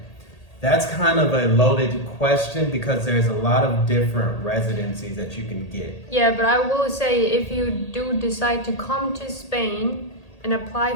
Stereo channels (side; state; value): right; late; 1.8 ms